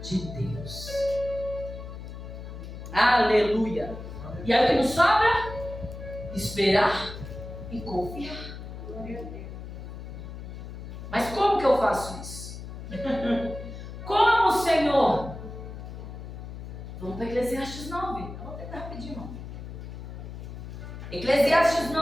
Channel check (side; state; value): left; noise; hum, 10 dB below the sound